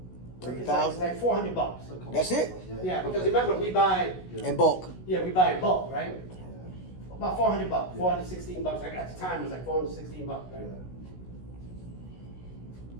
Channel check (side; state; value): right; late; 16 ms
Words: It's $3,000? like $400. That's it? Yeah, because remember, we buy, In bulk. yeah, we buy in bulk, right? About $400, $416. Like at the time, it was like $416, right?